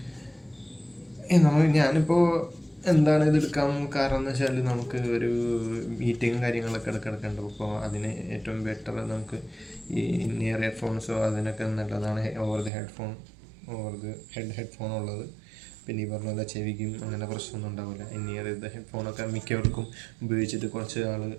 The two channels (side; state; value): left; drops out; at 12.7 s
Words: ഞാനിപ്പോൾ എന്താണ് ഇത് എടുക്കാൻ കാരണം എന്ന് വെച്ചാൽ, നമുക്ക് ഒരു മീറ്റിങ്ങും കാര്യങ്ങളൊക്കെ എടുക്കേണ്ടത്. അപ്പോൾ അതിന് ഏറ്റവും ബെറ്റർ നമുക്ക് ഈ നിയർ ഹെഡ്ഫോൺസോ അതിനൊക്കെ നല്ലതാണ് ഓവർ ദി ഹെഡ്ഫോൺ ഉള്ളത്. പിന്നെ ഈ പറഞ്ഞ പോലെ ചെവിക്കും അങ്ങനെ പ്രശ്നമൊന്നും ഉണ്ടാവില്ല. നിയർ ദ ഹെഡ്ഫോണൊക്കെ മിക്കവർക്കും ഉപയോഗിച്ചിട്ട് കുറച്ച് നാൾ